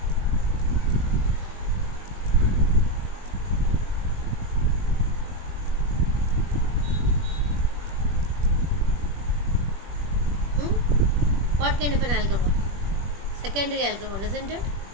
What kind of an alcohol? Secondary alcohol, isn't it?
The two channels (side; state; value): left; late; 21 ms